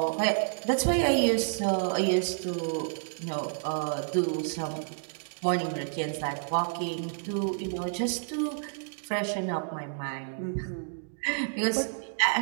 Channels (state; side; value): silent; left; digital silence